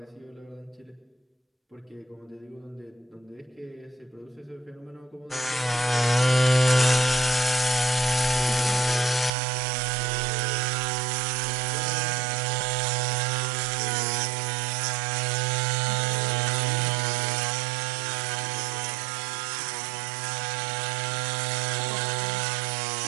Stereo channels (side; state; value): left; drops out; at 9.3 s